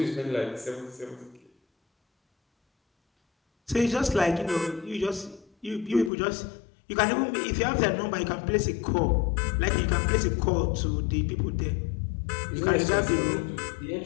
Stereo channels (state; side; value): drops out; right; at 6.1 s